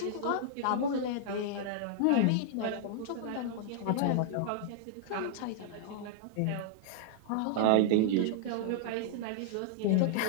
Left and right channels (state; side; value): different; both; correlation -0.01